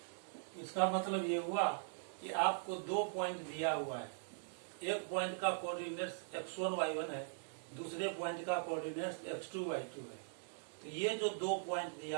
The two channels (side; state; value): left; silent; digital silence